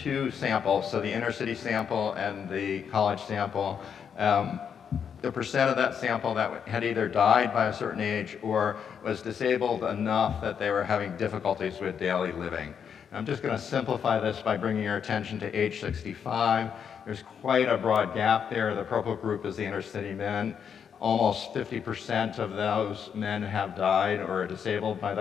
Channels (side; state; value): right; quieter; 7.5 dB